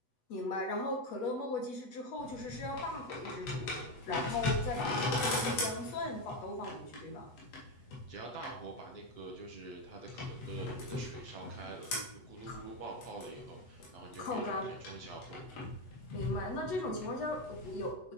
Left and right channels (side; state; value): right; late; 8.1 ms